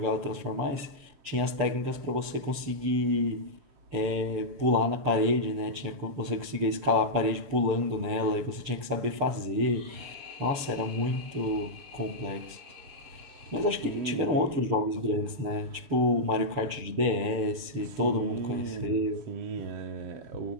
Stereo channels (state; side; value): late; left; 6.8 ms